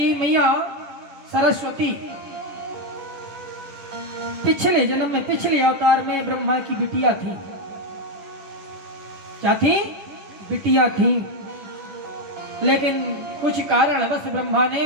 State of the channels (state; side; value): late; left; 10 ms